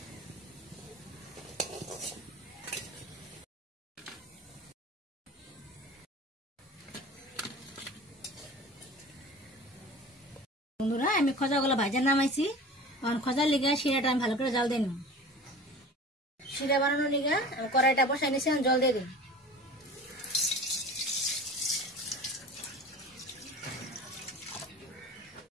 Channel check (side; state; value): both; normal; correlation 0.38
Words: বন্ধুরা, আমি খোঁজাগুলো ভাজা নামাইছি। এখন খোঁজার লিগা শিরাটা আমি ভালো করে জাল দিয়ে নিব। শিরা বানানোর লিগা আমি কড়াইটা বসাই নিয়েছি, জল দিয়ে দিই।